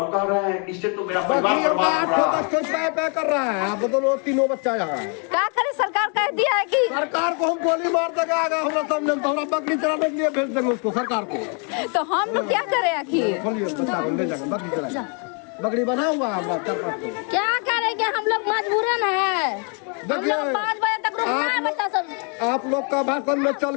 कह रहे हैं इससे तो मेरा परिवार बर्बाद हो रहा है। कर रहा है, आप दोनों तीनों बच्चा यहाँ है। क्या करे, सरकार कह दिया है कि सरकार को हम गोली मार देगा, हमरा सामने हमरा बकरी चराने के लिए भेज देंगे उसको सरकार को। तो हम लोग क्या करें आखिर? खोलिए बच्चा को ले जाकर बकरी चराएगा, बकरी बना हुआ है। क्या करेंगे, हम लोग मजबूरन है। हम लोग 5 बजे तक रुकना है बच्चा सब। आप लोग का भाषण में चल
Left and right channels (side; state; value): right; quieter; 38.4 dB